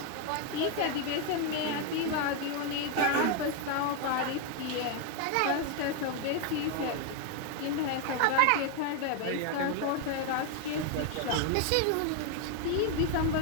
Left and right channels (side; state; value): both; different; correlation 0.01